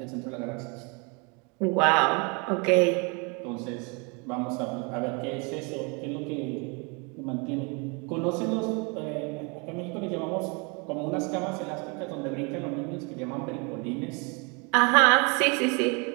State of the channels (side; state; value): left; quieter; 31.8 dB